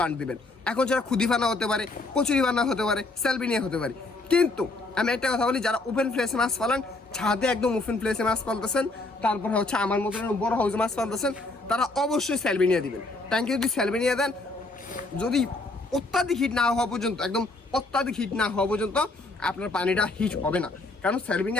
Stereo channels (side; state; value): right; quieter; 3.1 dB